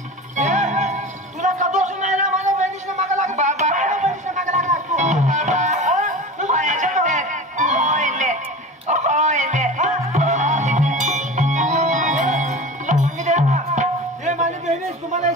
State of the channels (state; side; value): normal; both; correlation 0.33